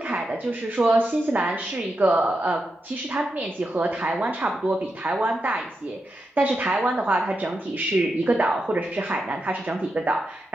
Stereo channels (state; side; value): normal; both; correlation 0.86